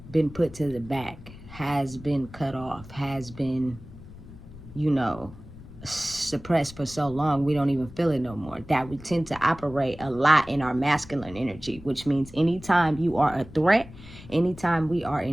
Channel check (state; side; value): noise; left; rumble, 17 dB below the sound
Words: been put to the back, has been cut off, has been, suppressed for so long we don't even feel it no more, that we tend to operate a lot in our masculine energy, which means anytime you are a threat, anytime we are